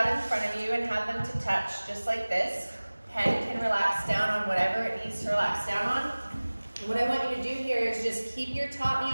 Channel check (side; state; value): both; inverted; correlation -1.00